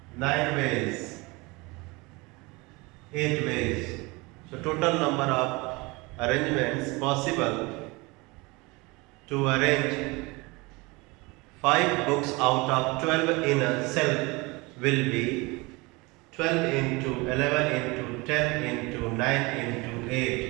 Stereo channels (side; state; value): left; quieter; 25.0 dB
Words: 9 ways, 8 ways. So total number of arrangements possible to arrange 5 books out of 12 in a shelf will be 12 into 11 into 10 into 9 into